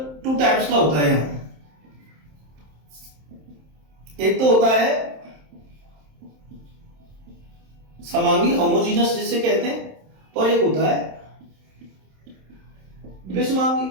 2 टाइप्स का होता है यहां। एक तो होता है समांगी, होमोजीनस जिसे कहते हैं, और एक होता है विषमांगी।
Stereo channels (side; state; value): left; late; 27 ms